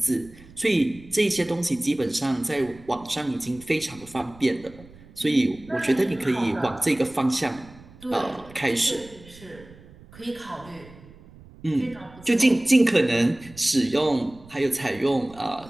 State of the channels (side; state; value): right; noise; rumble, 22 dB below the sound